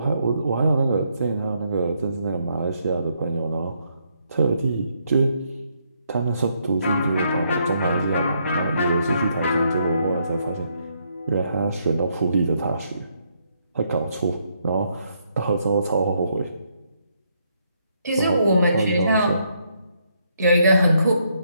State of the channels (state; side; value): inverted; both; correlation -0.74